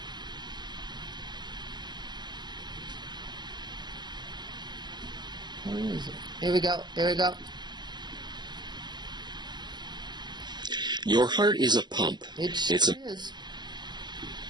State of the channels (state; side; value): late; left; 0.21 ms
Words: Where is it? Here we go. Here we go. Your heart is a pump. It It's a is.